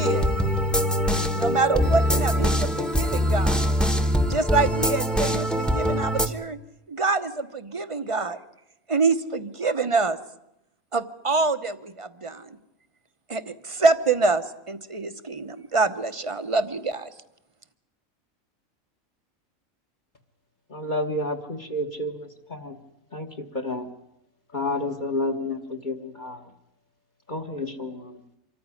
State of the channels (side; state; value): both; normal; correlation 0.40